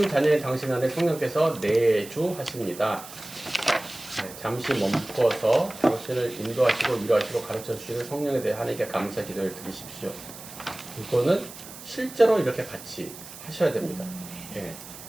자녀인 당신 안에 성령께서 내주하십니다. 잠시 멈춰서 당신을 인도하시고 위로하시고 가르쳐 주시는 성령에 대해 하나님께 감사 기도를 드리십시오. 이거는 실제로 이렇게 같이 하셔야 됩니다.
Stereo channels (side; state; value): right; noise; hiss, 15 dB below the sound